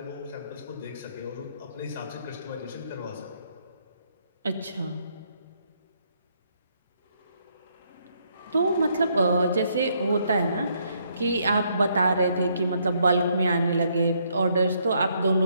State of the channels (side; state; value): both; inverted; correlation -0.72